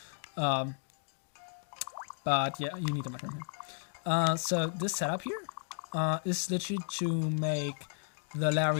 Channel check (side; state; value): right; silent; digital silence